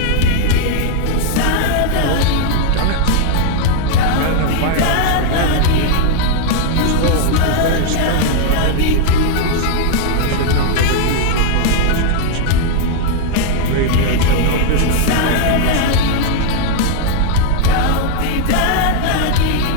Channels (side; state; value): both; different; correlation 0.00